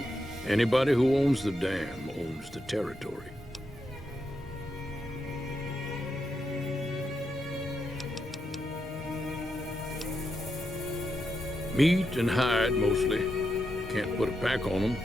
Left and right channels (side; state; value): both; normal; correlation 0.84